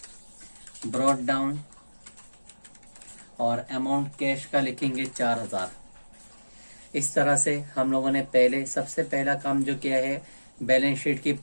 ब्रॉट डाउन और अमाउंट कैश का लिखेंगे 4,000। इस तरह से हम लोगों ने सबसे पहला काम जो किया है बैलेंस शीट की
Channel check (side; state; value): both; inverted; correlation -1.00